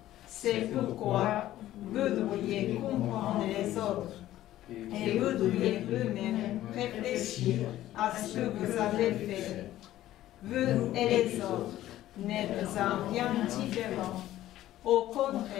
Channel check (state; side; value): quieter; right; 14.0 dB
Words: C'est pourquoi vous devriez comprendre les autres et vous devriez vous-même réfléchir à ce que vous avez fait. Vous et les autres n'êtes en rien différents. Au